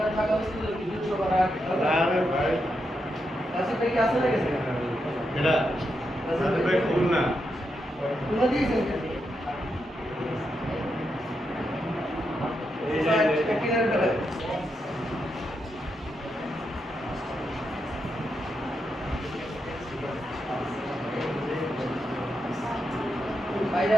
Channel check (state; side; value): normal; both; correlation 0.84